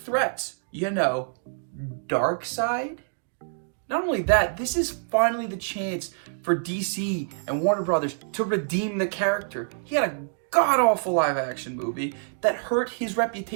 You know, Darkseid. Not only that, this is finally the chance for DC and Warner Brothers to redeem the character. He had a god-awful live-action movie that hurt his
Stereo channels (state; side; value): silent; left; digital silence